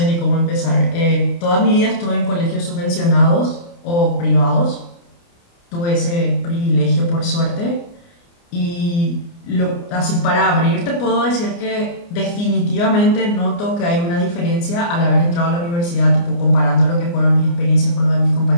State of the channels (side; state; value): right; late; 29 ms